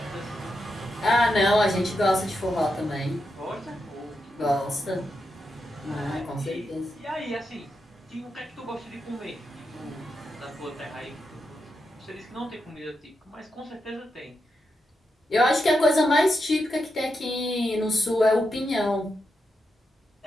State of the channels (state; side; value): normal; both; correlation 0.86